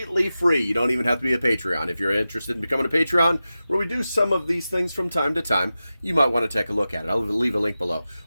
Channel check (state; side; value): inverted; both; correlation -0.94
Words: free. You don't even have to be a Patreon. If you're interested in becoming a Patreon, where we do some of these things from time to time, you might want to take a look at it. I'll leave a link below.